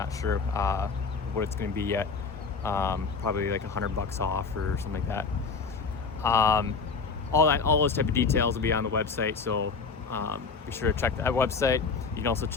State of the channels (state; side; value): quieter; right; 4.9 dB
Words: sure what it's going to be yet. Probably like $100 off or something like that. All those type of details will be on the website, so be sure to check that website. You can also